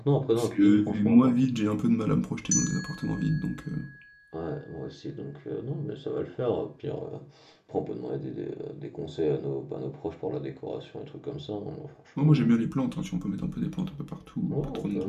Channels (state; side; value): identical; both; correlation 1.00